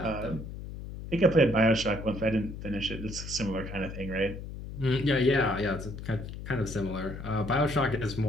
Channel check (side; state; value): left; noise; hum, 10 dB below the sound